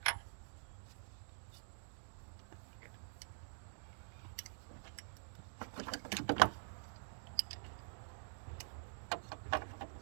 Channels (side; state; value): left; silent; digital silence